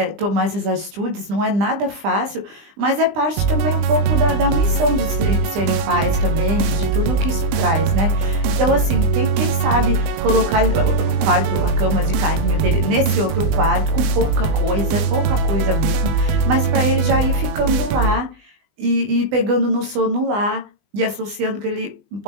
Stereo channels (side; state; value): left; late; 20 ms